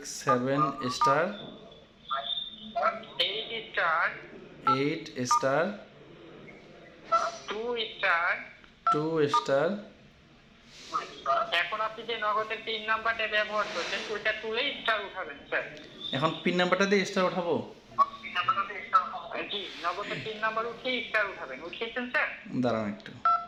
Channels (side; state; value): both; identical; correlation 1.00